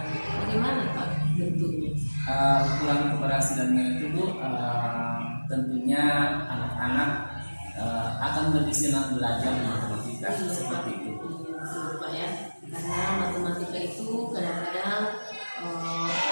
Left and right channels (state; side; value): inverted; both; correlation -1.00